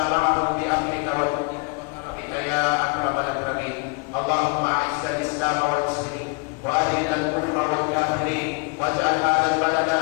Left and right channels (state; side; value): quieter; right; 30.9 dB